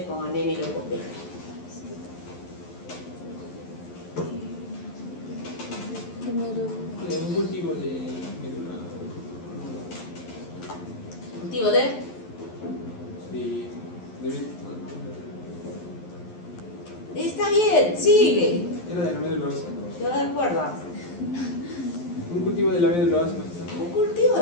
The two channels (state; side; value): late; right; 11 ms